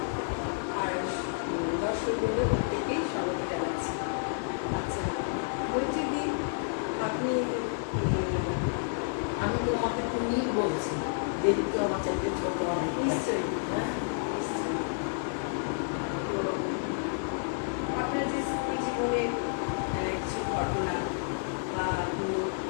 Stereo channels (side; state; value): right; silent; 56 dB below the other